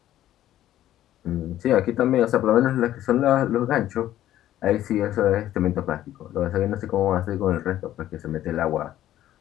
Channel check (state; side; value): quieter; right; 12.9 dB